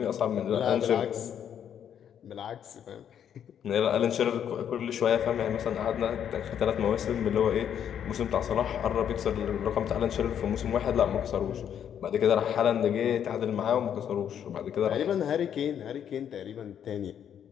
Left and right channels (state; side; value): quieter; right; 9.0 dB